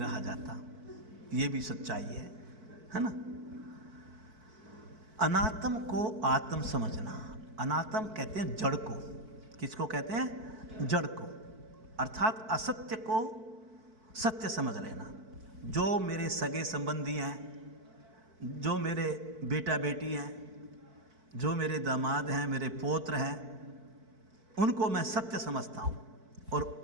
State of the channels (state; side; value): late; left; 4.5 ms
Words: जाता, ये भी सच्चाई है ना। अनात्म को आत्म समझना। अनात्म कहते हैं जड़ को। किसको कहते हैं? जड़ को। अर्थात असत्य को सत्य समझ लेना। जो मेरे सगे संबंधी हैं, जो मेरे बेटा बेटी हैं, जो मेरे दामाद हैं, मेरे पौत्र हैं, उनको मैं सत्य समझता हूँ। और